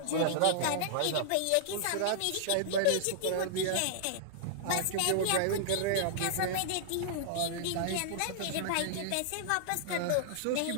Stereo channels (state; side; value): different; both; correlation -0.01